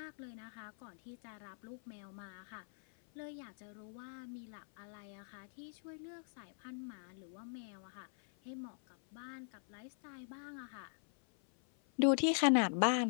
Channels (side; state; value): right; silent; 50 dB below the other